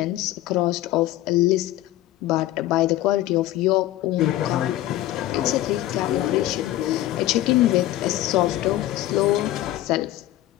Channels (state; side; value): quieter; right; 14.9 dB